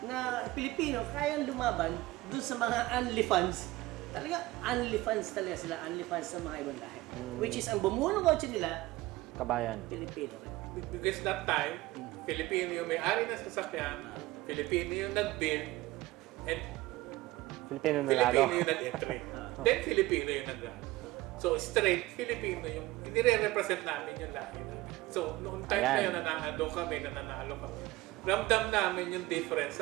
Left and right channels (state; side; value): quieter; left; 18.5 dB